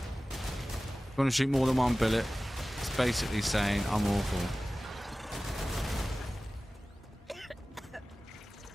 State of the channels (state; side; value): normal; both; correlation 0.97